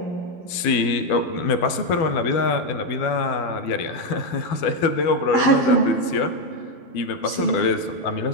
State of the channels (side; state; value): right; late; 12 ms